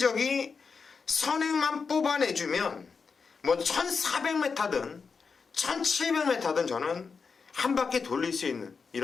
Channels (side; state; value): right; quieter; 5.2 dB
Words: 선행만 뽑아내주면 뭐 1400m든 1700m든 저는 한 바퀴 돌릴 수 있는